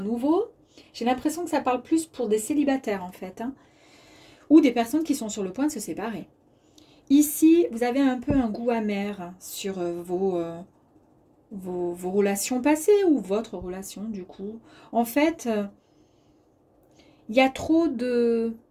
J'ai l'impression que ça parle plus pour des célibataires, en fait. Hein, ou des personnes qui sont sur le point de se séparer. Ici, vous avez un peu un goût amer sur vos relations passées ou votre relation, du coup. En fait, il y a trop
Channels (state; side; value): identical; both; correlation 1.00